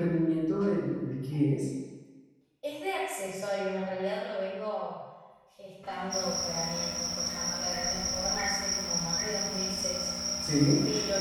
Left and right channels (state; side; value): identical; both; correlation 1.00